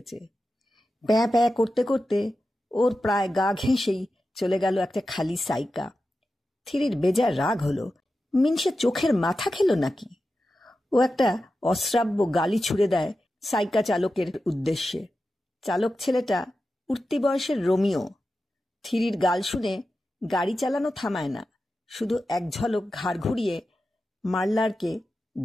প্যাঁ প্যাঁ করতে করতে ওর প্রায় গা ঘেঁষেই চলে গেল একটা খালি সাইকা। থিরির বেজার রাগ হলো, মিনসে চোখের মাথা খেল নাকি। ও একটা অশ্রাব্য গালি ছুড়ে দেয় সাইকা চালকের উদ্দেশ্যে। চালক ছেলেটা উঠতি বয়সের রোমিও। থিরির গাল শুনে গাড়ি চালানো থামায় না, শুধু এক ঝলক ঘাড় ঘুরিয়ে মারলারকে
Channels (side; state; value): both; normal; correlation 0.92